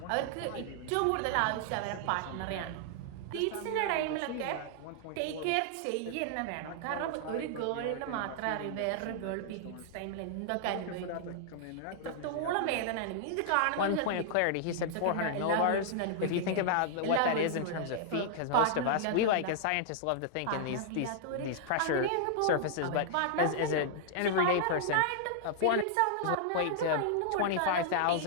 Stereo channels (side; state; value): both; different; correlation -0.01